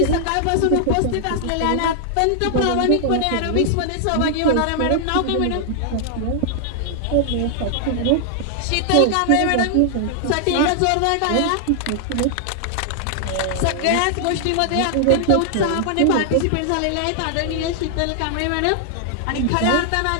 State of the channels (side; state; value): both; different; correlation 0.00